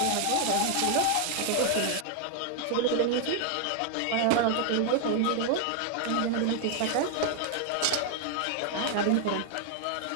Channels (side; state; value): both; different; correlation 0.00